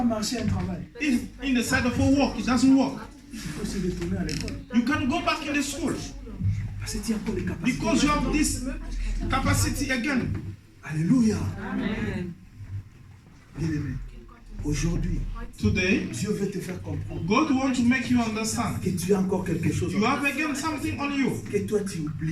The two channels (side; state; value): both; identical; correlation 1.00